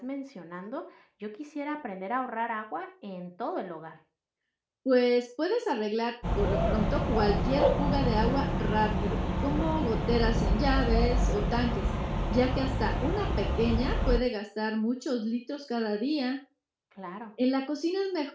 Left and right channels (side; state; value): both; identical; correlation 1.00